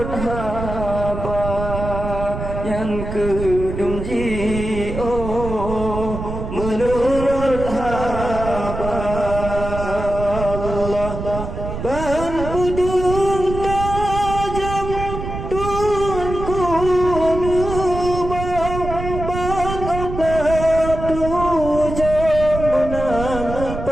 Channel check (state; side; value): noise; right; rumble, 6 dB below the sound